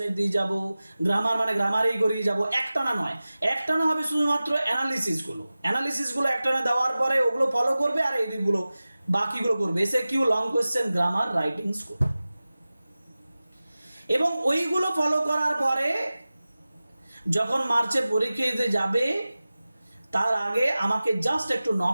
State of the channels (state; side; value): inverted; both; correlation -0.97